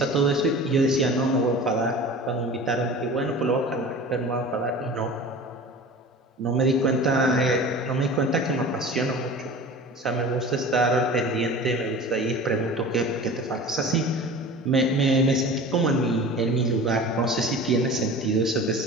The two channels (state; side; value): normal; both; correlation 0.38